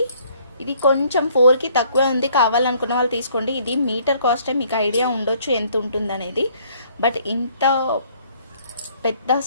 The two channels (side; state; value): both; inverted; correlation -0.62